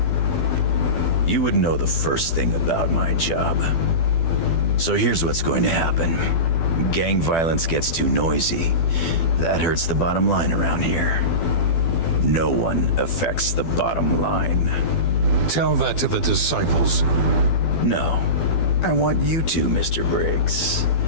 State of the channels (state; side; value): late; right; 12 ms